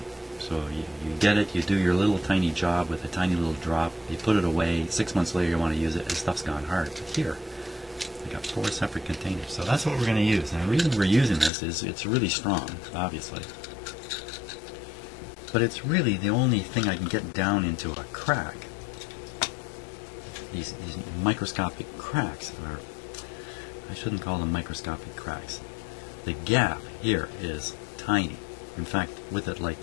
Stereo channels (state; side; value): drops out; right; at 11.5 s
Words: So you get it, you do your little tiny job with a tiny little drop, you put it away, 6 months later you want to use it, and stuff's gone hard. But here, I got 4 separate containers. So that's what we're going to use. And the reason we're using this is it's really strong, obviously. But it's really the only thing I can get down into a crack. These microscopic cracks are, I shouldn't call them microscopic cracks. The gap here is tiny. In fact, with it like